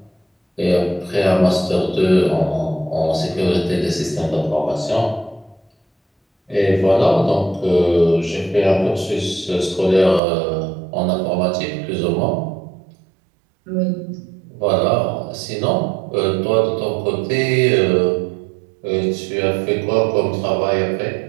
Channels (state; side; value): drops out; left; at 10.2 s